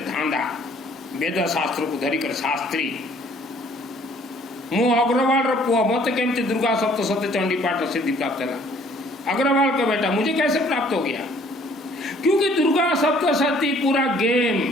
धांधा वेद शास्त्र को धरिकर शास्त्री। मु अग्रवाल पुआ, मत केमती दुर्गा सप्तशती चंडी पाठ सिद्धि प्राप्त है। अग्रवाल का बेटा मुझे कैसे प्राप्त हो गया? क्योंकि दुर्गा सप्तशती पूरा गेम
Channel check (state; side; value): normal; both; correlation 0.59